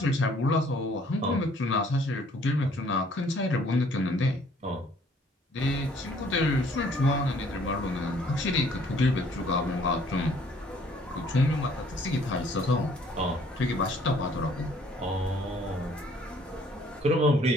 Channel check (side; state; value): both; normal; correlation 0.59